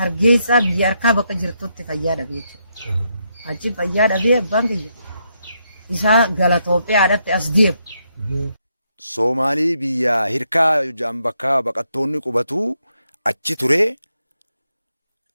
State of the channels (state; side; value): inverted; both; correlation -0.79